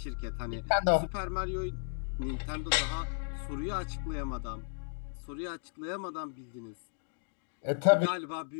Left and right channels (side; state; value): right; silent; digital silence